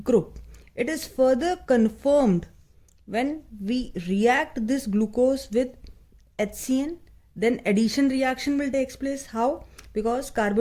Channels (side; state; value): both; identical; correlation 1.00